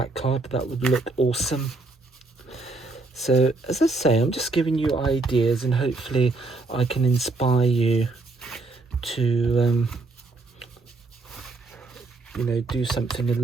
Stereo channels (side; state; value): left; quieter; 3.4 dB